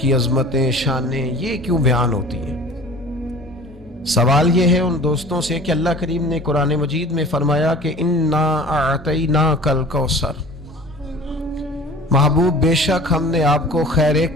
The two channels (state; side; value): normal; both; correlation 0.43